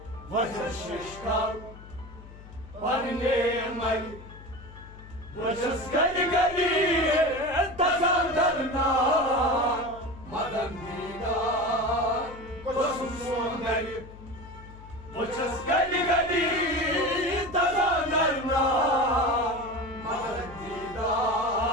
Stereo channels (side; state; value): left; noise; hum, 17 dB below the sound